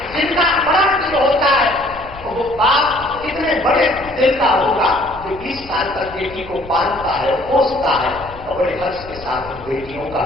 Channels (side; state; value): left; noise; rumble, 17 dB below the sound